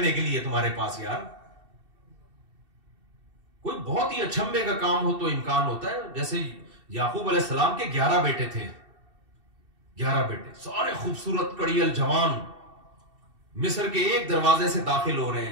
के लिए तुम्हारे पास यार। कोई बहुत ही अचंभे का काम हो तो इम्कान होता है। जैसे याकूब अलैहिस्सलाम के 11 बेटे थे, 11 बेटे, सारे खूबसूरत कड़ियल जवान, मिस्र के एक दरवाजे से दाखिल हो रहे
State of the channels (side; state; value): left; late; 2.7 ms